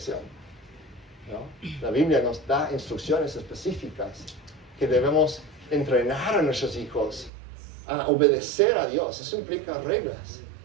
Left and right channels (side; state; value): left; drops out; at 7.3 s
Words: ¿no? La Biblia nos da instrucciones específicas que debemos entrenar a nuestros hijos a obedecer a Dios. Eso implica reglas,